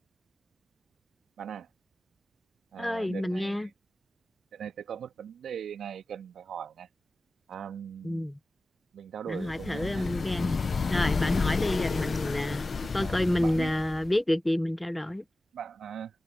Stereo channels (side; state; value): both; normal; correlation 0.95